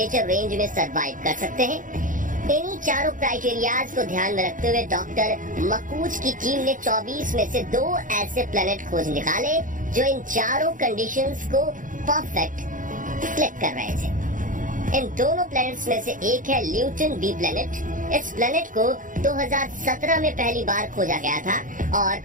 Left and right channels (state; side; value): late; left; 0.38 ms